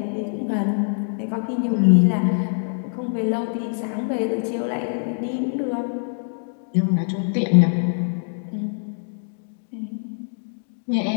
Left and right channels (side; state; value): right; silent; digital silence